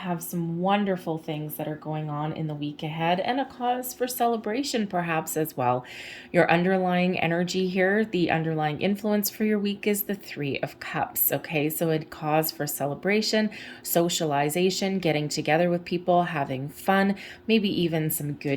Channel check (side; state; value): both; identical; correlation 1.00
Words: some wonderful things that are going on in the week ahead, and a cause for celebration perhaps as well. Your underlying energy here, the underlying influence for your week is the 3 of Cups. Okay, so a cause for celebration, socialization, getting together with people, having fun, maybe even some